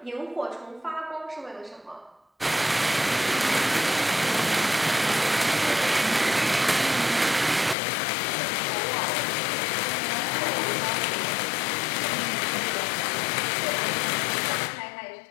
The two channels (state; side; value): drops out; right; at 7.8 s